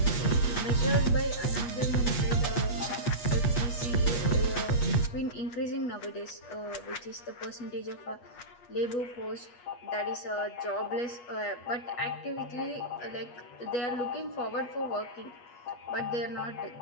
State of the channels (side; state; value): right; late; 8.3 ms